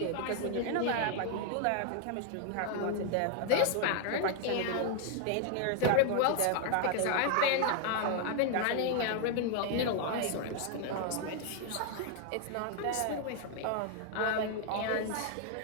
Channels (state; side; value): different; both; correlation 0.00